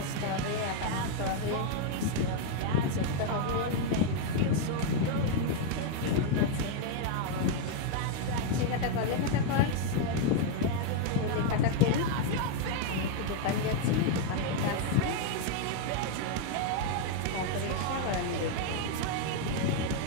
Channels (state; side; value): different; both; correlation 0.00